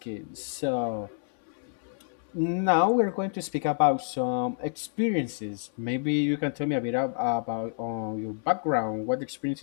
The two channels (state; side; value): silent; right; 59 dB below the other